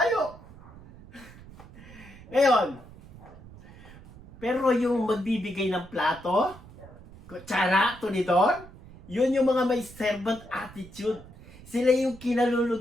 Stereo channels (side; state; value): right; noise; rumble, 19 dB below the sound